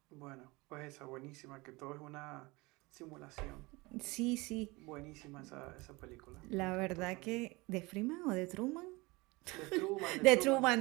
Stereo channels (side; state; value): left; quieter; 23.9 dB